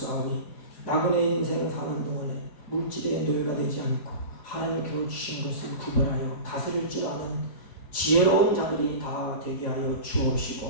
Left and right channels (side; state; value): right; late; 4.9 ms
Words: 나그네 인생 사는 동안에 물질의 노예가 되지 않고 하나님께로 주신 것을 구별하여 다스릴 줄 아는 지혜로운 자들이 다 되게 하여